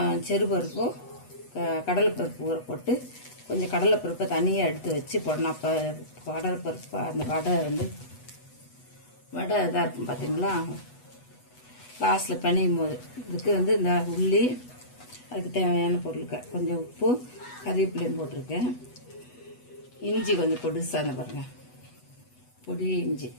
செறுபருப்பும் கடலைப்பருப்பு ஊற போட்டு கொஞ்சம் கடலைப்பருப்பை தனியாக எடுத்து வச்சு போடணும். அப்போ கடலைப்பருப்பு அந்த வடை இதாக இருக்கும் பார்த்தீங்களா. லாஸ்ட்டில் பிணையும் போது இதுக்கு வந்து இந்த உள்ளி, அதுக்கு தேவையான பொருட்கள் கொஞ்சம் உப்பு, கறிவேப்பிலையும் போட்டிருக்கேன். இஞ்சி கொஞ்சம் பொடிசாக அந்த பாருங்கள், பொடி இஞ்சி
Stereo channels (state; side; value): late; right; 8.1 ms